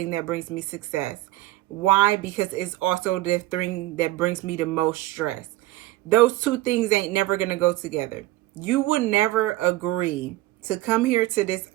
that brings me success. Why? Because it's also the thing that brings me the most stress. Those two things ain't never gonna go together. You would never agree to come here to this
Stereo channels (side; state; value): left; quieter; 17.4 dB